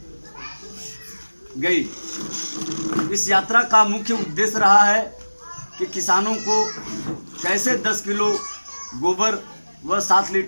गई। इस यात्रा का मुख्य उद्देश्य रहा है कि किसानों को कैसे 10 किलो गोबर व 7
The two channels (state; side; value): inverted; both; correlation -1.00